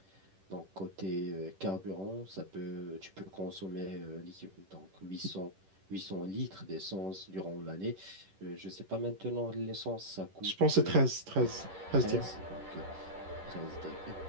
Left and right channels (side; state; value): left; late; 11 ms